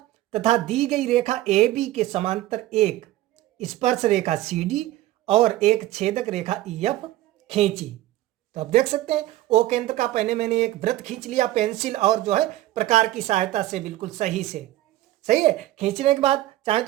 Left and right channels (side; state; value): left; quieter; 15.5 dB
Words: तथा दी गई रेखा ए बी के समांतर एक स्पर्श रेखा सी डी और एक छेदक रेखा ई एफ खींची। तो आप देख सकते हैं ओ केंद्र का पहले मैंने एक वृत्त खींच लिया पेंसिल और जो है प्रकार की सहायता से, बिल्कुल सही से। सही है, खींचने के बाद चाहे